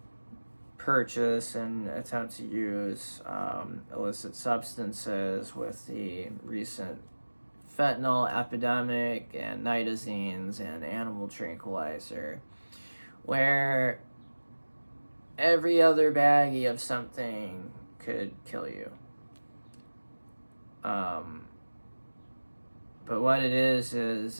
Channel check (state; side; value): inverted; both; correlation -1.00